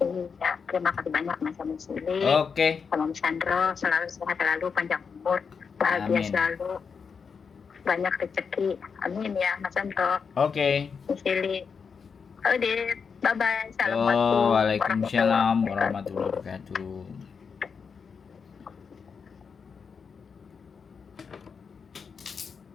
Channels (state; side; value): quieter; right; 5.9 dB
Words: Iya, terima kasih banyak Mas Yuli. Sama Mas Sandro, selalu sehat selalu, panjang umur, bahagia selalu, banyak rezeki. Amin ya Mas Sandro. Mas Yuli. Udah, bye bye. Assalamualaikum. Waalaikumsalam warahmatullahi wabarakatuh.